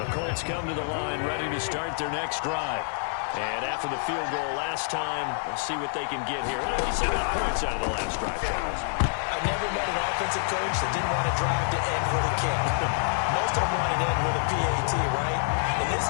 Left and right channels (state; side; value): silent; right; digital silence